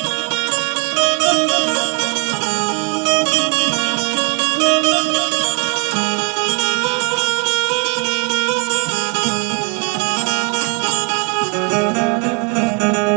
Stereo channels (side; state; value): left; quieter; 36.5 dB